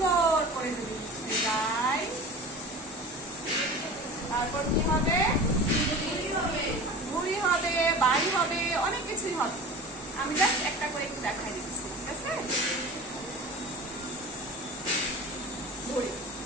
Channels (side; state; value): both; normal; correlation 0.35